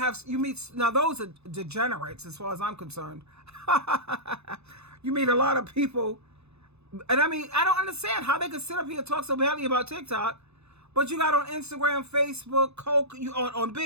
meet, now those are degenerates as far as I'm concerned. You meet a lot of people And I mean, I don't understand how they could sit up here and talk so badly about TikTok, but you got on Instagram, Facebook, Coke, you on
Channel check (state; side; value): late; left; 0.80 ms